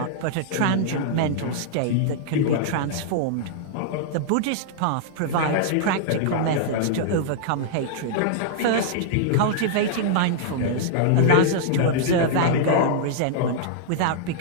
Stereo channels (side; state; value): both; different; correlation -0.01